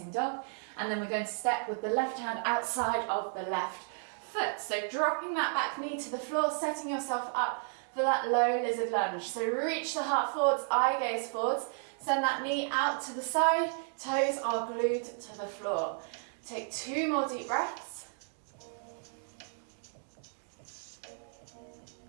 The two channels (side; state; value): left; silent; 56 dB below the other